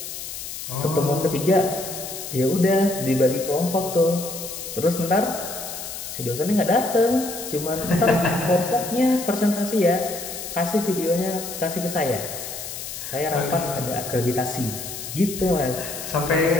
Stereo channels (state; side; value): noise; left; hiss, 8 dB below the sound